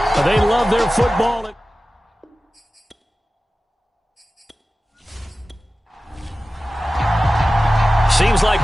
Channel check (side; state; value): both; normal; correlation 0.95